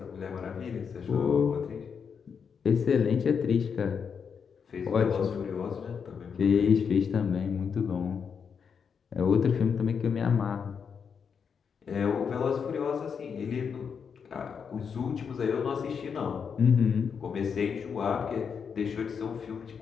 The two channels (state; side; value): quieter; right; 6.5 dB